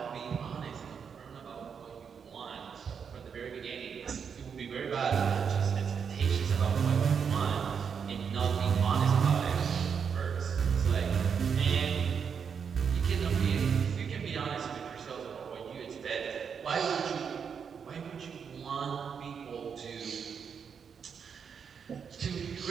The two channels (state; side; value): quieter; left; 6.8 dB